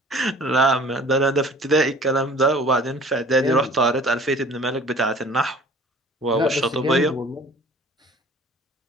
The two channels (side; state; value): both; normal; correlation 0.48